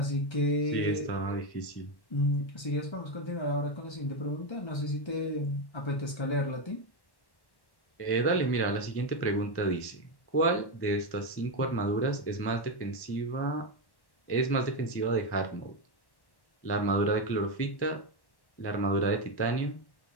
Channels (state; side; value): late; right; 1.1 ms